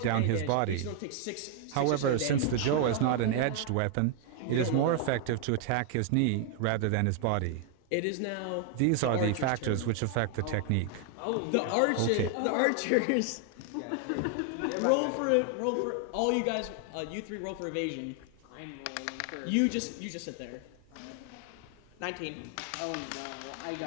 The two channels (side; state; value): both; different; correlation 0.00